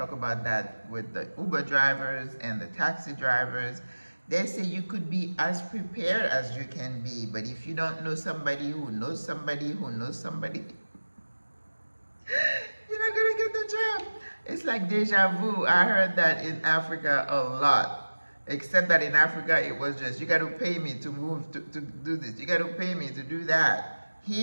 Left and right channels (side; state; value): both; inverted; correlation -1.00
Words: about that with the Uber drivers and the taxi drivers. They say you could be as prepared as you can be, but if you don't know somebody who knows somebody who knows somebody, you're not gonna get the job. It's like deja vu. I heard that in Africa a lot. Except that in Africa it was just, you got to pay me to move to do this. You got to pay me to do that.